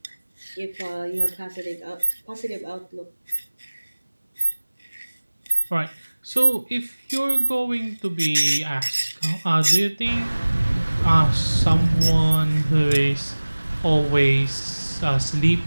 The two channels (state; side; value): inverted; both; correlation -1.00